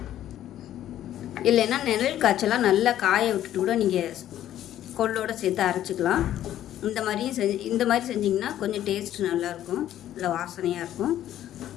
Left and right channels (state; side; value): quieter; right; 12.1 dB